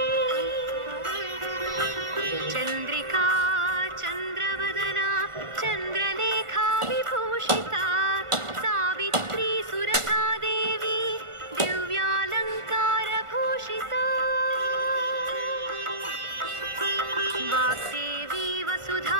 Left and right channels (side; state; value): left; late; 1.4 ms